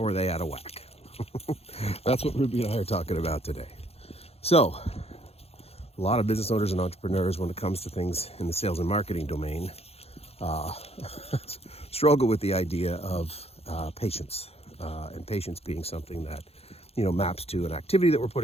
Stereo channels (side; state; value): right; late; 0.29 ms